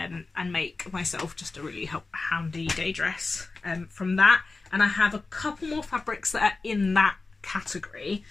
make myself just a really handy day dress from that. And I have a couple more fabrics that are in that category.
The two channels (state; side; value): quieter; right; 3.8 dB